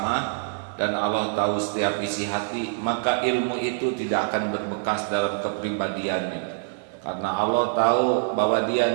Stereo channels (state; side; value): silent; left; 60 dB below the other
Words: dan Allah tahu setiap isi hati, maka ilmu itu tidak akan berbekas dalam kepribadiannya. Karena Allah tahu bahwa